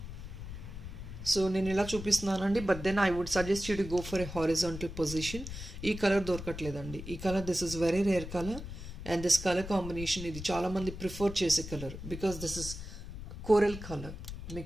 సో నేను ఇలా చూపిస్తున్నానండి. But then I would suggest you to go for a horizontal position. ఈ కలర్ దొరకట్లేదండి. ఈ colour this is very rare colour. And this colour combination ఇది చాలామంది ప్రిఫర్ చేసే colour. Because this is coral colour.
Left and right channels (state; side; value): noise; left; rumble, 9 dB below the sound